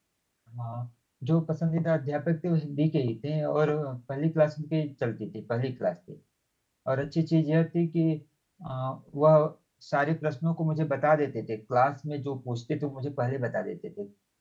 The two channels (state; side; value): identical; both; correlation 1.00